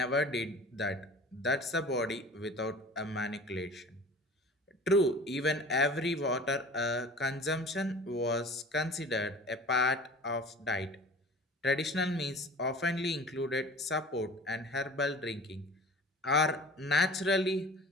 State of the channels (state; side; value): normal; both; correlation 0.42